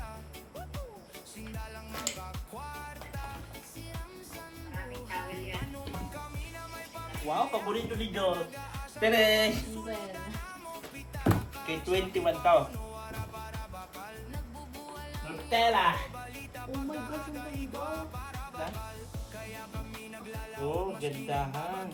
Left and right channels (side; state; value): both; identical; correlation 1.00